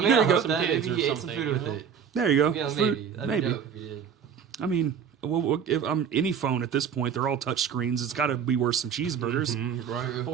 mean, There I you go. hope some that kids maybe or he ate some something, food you with know? it. There you go. You know, Fruit- maybe. That'd maybe. be dope if he did. I mean, well, if any phone at this point, they're all touch screens. It's got to be worth some cheeseburgers,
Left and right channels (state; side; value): quieter; left; 7.5 dB